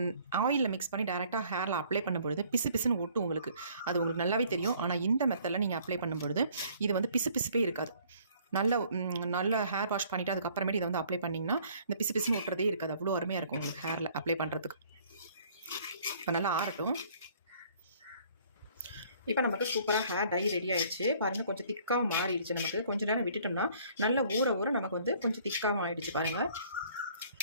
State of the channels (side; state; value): both; inverted; correlation -0.58